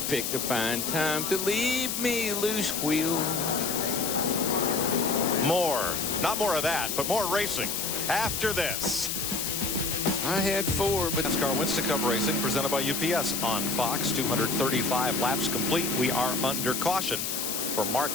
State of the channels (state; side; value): noise; left; hiss, 2 dB below the sound